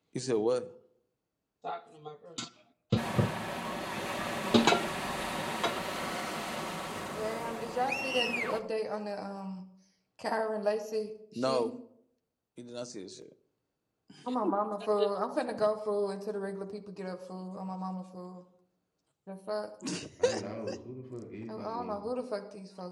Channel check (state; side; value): identical; both; correlation 1.00